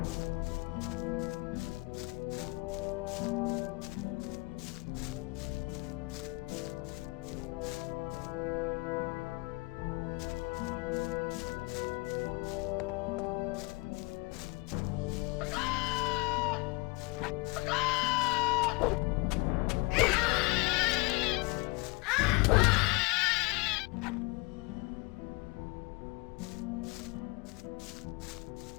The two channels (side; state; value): right; quieter; 25.6 dB